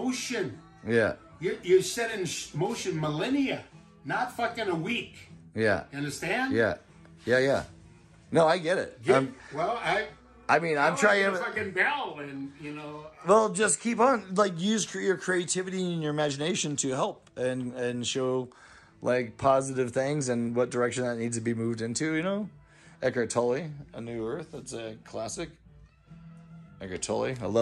Yeah. You set in motion millennia, not fucking a week. Yeah. You understand? Yeah. Yeah. No, I get it. I'm trying to fucking bell, and Well, just keep on, like, use your creativity and your imagination to help and show, like, positive things and what direction that needs to be moved into. Eckhart Tolle, A New Earth. That's a classic. Eckhart Tolle. I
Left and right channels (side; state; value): both; identical; correlation 1.00